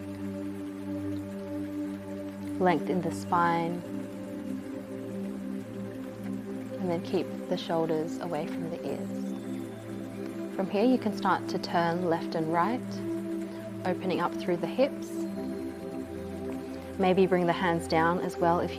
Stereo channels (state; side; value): identical; both; correlation 1.00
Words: length in the spine, and then keep the shoulders away from the ears. From here you can start to turn left and right, opening up through the hips. Maybe bring the hands down as well if